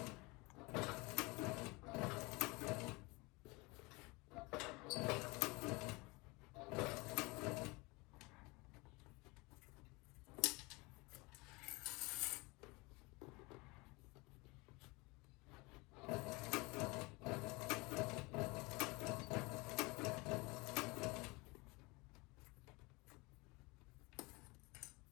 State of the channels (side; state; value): right; quieter; 25.5 dB